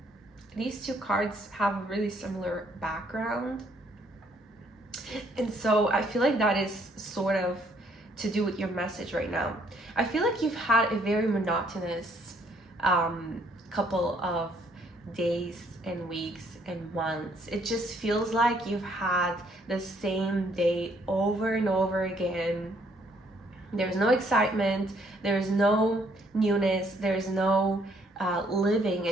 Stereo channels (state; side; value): normal; both; correlation 0.67